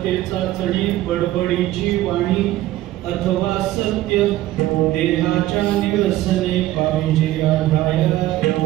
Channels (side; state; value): left; quieter; 15.2 dB